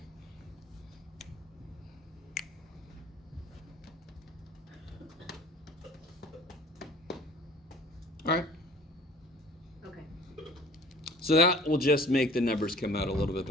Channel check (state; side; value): normal; both; correlation 0.49